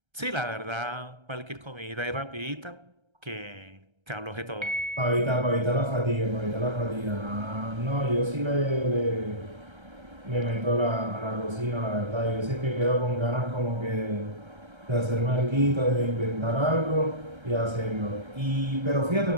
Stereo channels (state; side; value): late; left; 1.3 ms